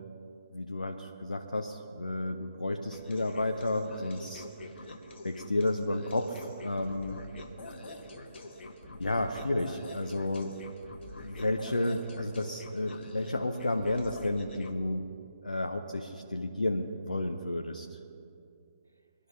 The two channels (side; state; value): both; inverted; correlation -0.88